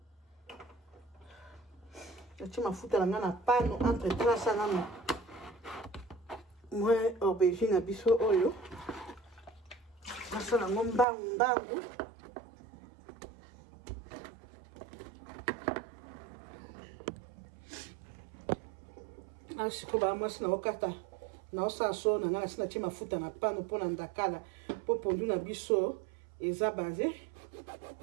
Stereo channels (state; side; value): drops out; left; at 11.1 s